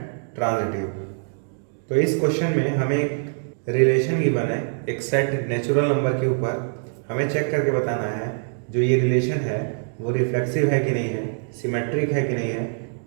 transitive. तो इस question में हमें एक relation given है, एक set natural number के ऊपर हमें चेक करके बताना है जो ये रिलेशन है वो रिफ्लेक्सिव है कि नहीं है, सिमेट्रिक है कि नहीं है,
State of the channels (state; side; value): silent; left; digital silence